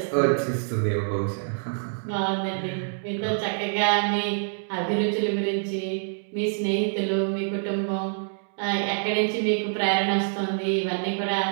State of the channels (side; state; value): left; silent; digital silence